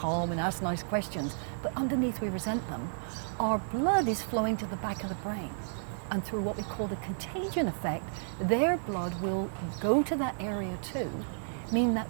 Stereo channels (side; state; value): left; silent; digital silence